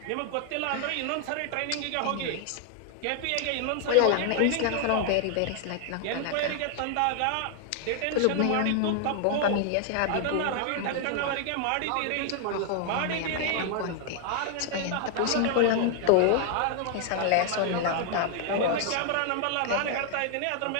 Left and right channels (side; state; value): both; different; correlation 0.00